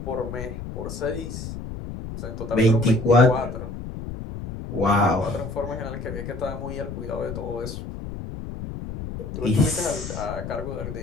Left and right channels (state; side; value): noise; left; rumble, 8 dB below the sound